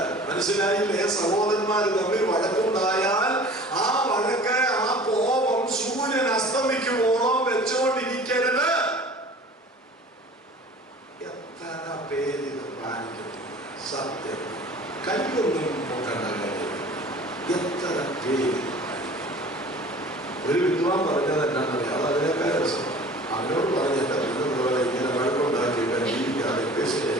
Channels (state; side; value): normal; both; correlation 0.44